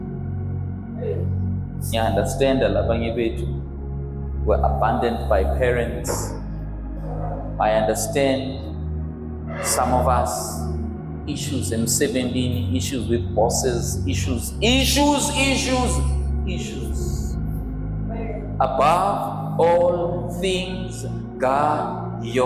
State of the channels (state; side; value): identical; both; correlation 1.00